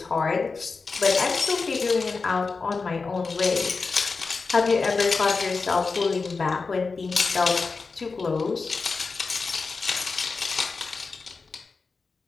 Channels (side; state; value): right; quieter; 4.4 dB